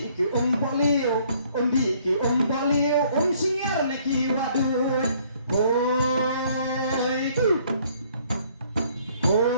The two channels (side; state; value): both; inverted; correlation -0.62